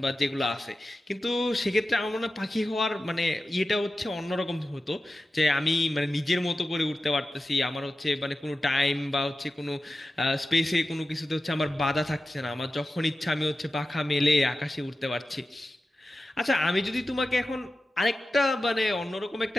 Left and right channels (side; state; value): both; normal; correlation 0.93